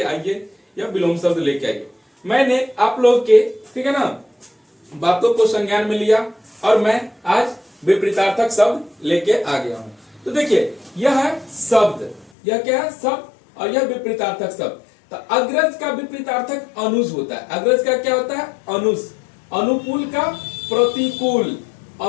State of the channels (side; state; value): right; drops out; at 12.3 s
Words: आइए या विलोम शब्द लेके आइए। मैंने आप लोग के ठीक है ना बातों को संज्ञान में लिया और मैं आज विपरीतार्थक शब्द लेके आ गया हूँ। तो देखिए, यह है शब्द, यह क्या है शब्द, और यह विपरीतार्थक शब्द। तो अग्रज का विपरीतार्थक अनुज होता है। अग्रज का क्या होता है? अनुज। अनुकूल का प्रतिकूल,